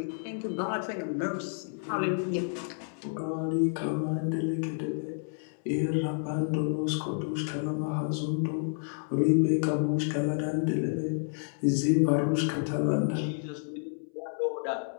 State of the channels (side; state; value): right; silent; 58 dB below the other